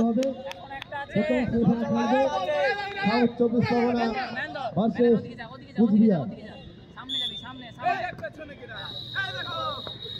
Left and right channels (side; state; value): both; identical; correlation 1.00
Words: হবে। প্রথম সেমিফাইনাল খেলবে সাউথ চব্বিশ পরগনা ভার্সেস কুচবিহার।